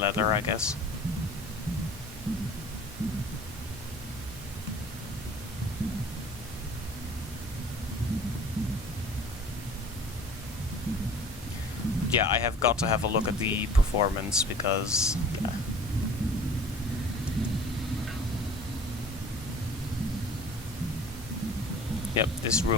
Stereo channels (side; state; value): both; normal; correlation 0.46